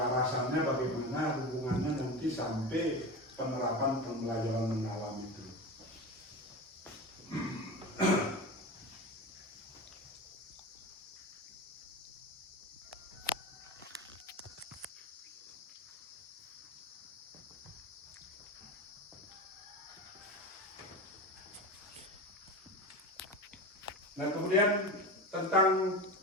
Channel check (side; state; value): both; normal; correlation 0.26